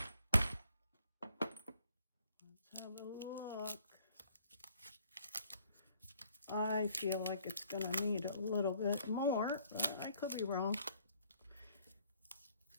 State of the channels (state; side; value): inverted; both; correlation -0.63